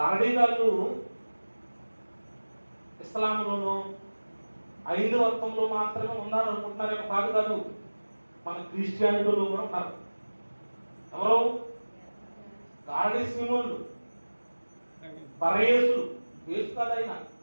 గారు ఇస్లాంలోనూ హైందవత్వంలో మాత్రమే ఉన్నారు అనుకుంటున్నారేమో. కాదు కాదు, మన క్రిస్టియానిటీలో కూడా ఉన్నారు. ఎవరు? గారడీ సీమోళ్ళు, పరయేసులు. యేసు కాదైనా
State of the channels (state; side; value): inverted; both; correlation -1.00